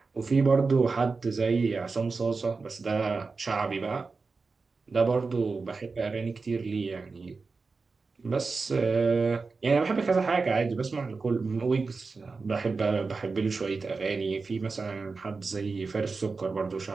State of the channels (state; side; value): quieter; left; 4.3 dB